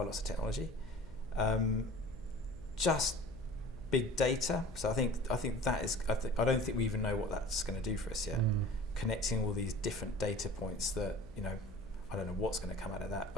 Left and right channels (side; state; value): left; noise; hum, 18 dB below the sound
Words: of technology. Just big data. So I think that is. I don't think we even know what that's going to do for us yet. Connecting all these different data points that I don't know what's going to come out of that,